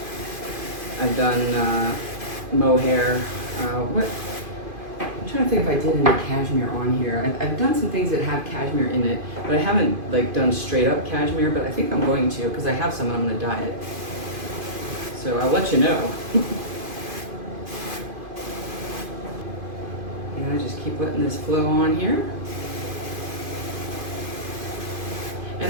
I've done mohair. I'm trying to think if I did any cashmere on here. I've done some things that have cashmere in it, but I haven't done straight up cashmere, but I think I'm going to because I have some and I'm going to dye it. So I'll let you know. And I just keep letting this flow on here.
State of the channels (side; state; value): left; late; 2.5 ms